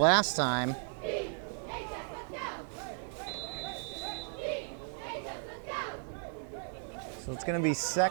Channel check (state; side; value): silent; left; 54 dB below the other